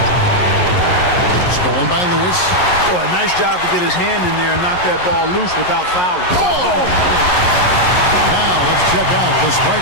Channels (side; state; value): right; late; 11 ms